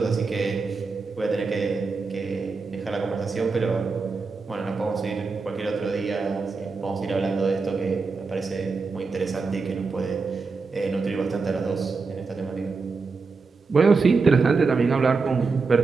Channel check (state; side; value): quieter; left; 4.5 dB